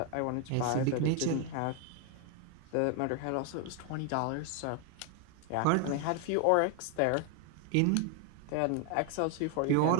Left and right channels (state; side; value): different; both; correlation 0.01